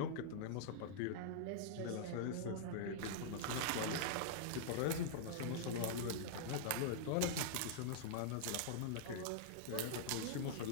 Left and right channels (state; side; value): different; both; correlation -0.02